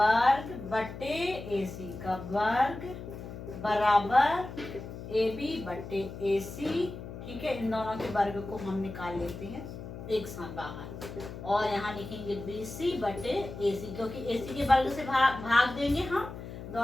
बटे AC का वर्ग बराबर AB बटे AC। ठीक है, इन दोनों के वर्ग को हम निकाल लेते हैं एक साथ बाहर और यहाँ लिखेंगे BC बटे AC, क्योंकि AC के वर्ग से भाग देंगे हम,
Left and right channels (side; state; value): left; noise; hum, 11 dB below the sound